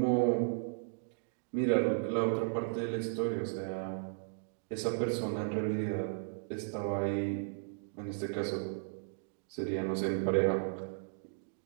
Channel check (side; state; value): left; silent; digital silence